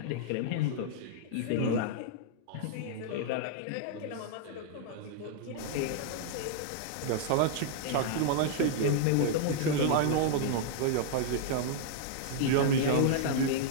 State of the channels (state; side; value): different; both; correlation -0.01